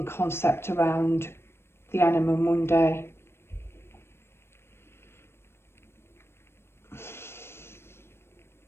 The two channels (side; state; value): right; late; 0.12 ms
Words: concept around the anima mundi.